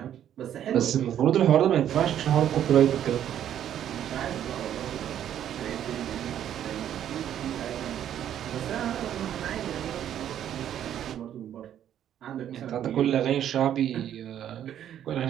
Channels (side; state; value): left; quieter; 10.4 dB